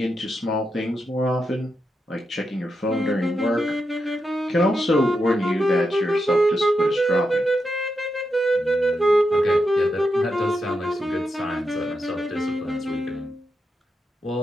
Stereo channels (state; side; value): normal; both; correlation 0.86